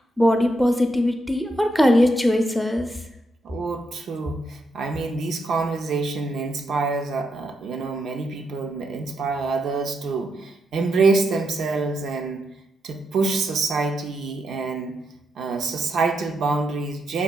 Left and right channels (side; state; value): both; normal; correlation 0.82